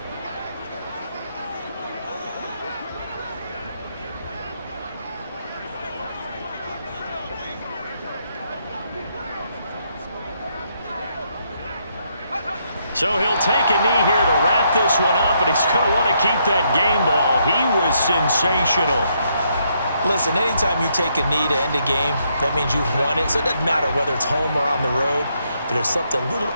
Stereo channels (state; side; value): inverted; both; correlation -0.75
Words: So he'll take a knee here to wrap this one up, and he's going to want to keep that game ball. He was sensational. Listen, anytime you take a knee to end a game, that means you've won it. So it doesn't matter whether it's home or on the road, but there's something a little